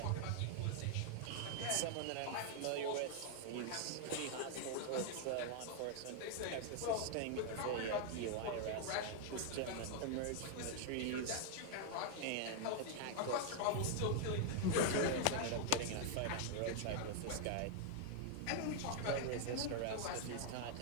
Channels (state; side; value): different; both; correlation 0.00